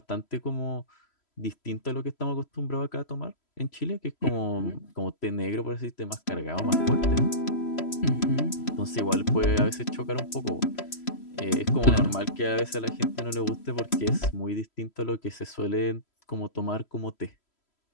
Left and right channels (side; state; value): right; late; 3.0 ms